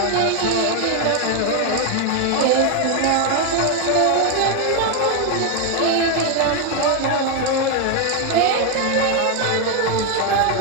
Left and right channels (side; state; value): both; different; correlation 0.01